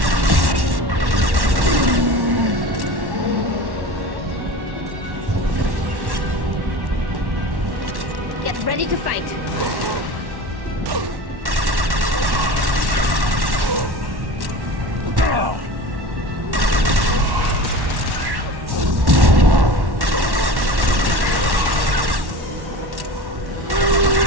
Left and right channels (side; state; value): left; late; 1.1 ms